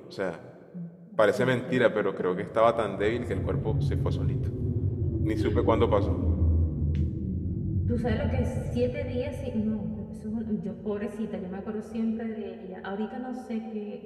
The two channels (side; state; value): both; identical; correlation 1.00